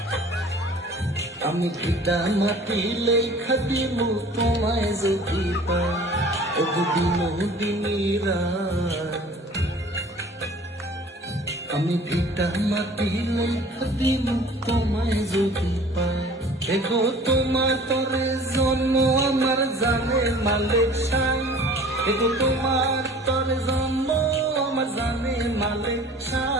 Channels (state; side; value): normal; both; correlation 0.47